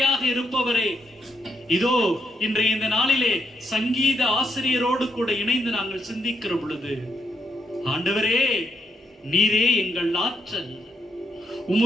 இருப்பவரே, இதோ இன்றைய இந்த நாளிலே சங்கீத ஆசிரியரோடு கூட இணைந்து நாங்கள் சிந்திக்கிற பொழுது, ஆண்டவரே, நீரே எங்கள் ஆற்றல்,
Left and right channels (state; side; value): normal; both; correlation 0.76